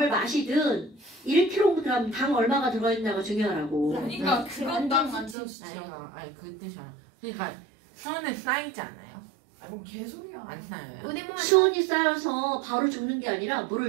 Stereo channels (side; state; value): left; drops out; at 5.4 s